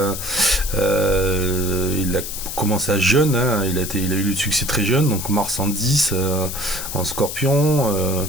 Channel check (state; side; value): noise; left; hiss, 7 dB below the sound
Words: a commencé à jeune, il a eu le succès très jeune, donc Mars en 10 en Scorpion.